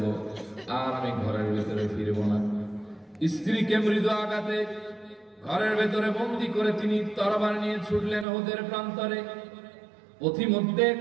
আর আমি ঘরের ভেতরে ফিরবো না। স্ত্রীকে মৃদু আঘাতে ঘরের ভেতরে বন্দী করে তিনি তরবারি নিয়ে ছুটলেন উহুদের প্রান্তরে। পথিমধ্যে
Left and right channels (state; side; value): drops out; left; at 8.2 s